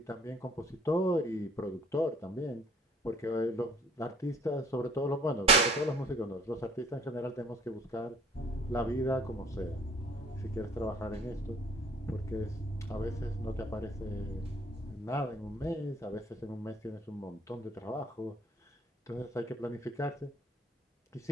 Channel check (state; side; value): normal; both; correlation 0.55